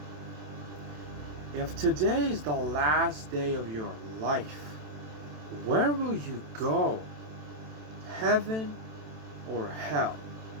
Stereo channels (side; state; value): left; late; 27 ms